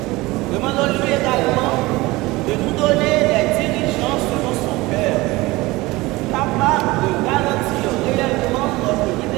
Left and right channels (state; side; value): quieter; left; 20.8 dB